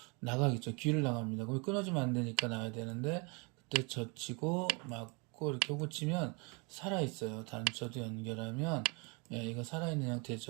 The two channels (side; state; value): left; quieter; 31.2 dB